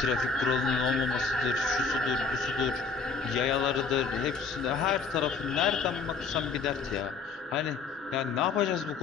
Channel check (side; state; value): right; quieter; 4.9 dB